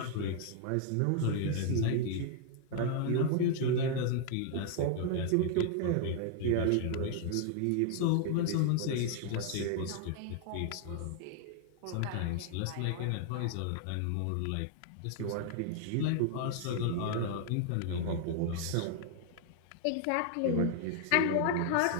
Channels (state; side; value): different; both; correlation 0.00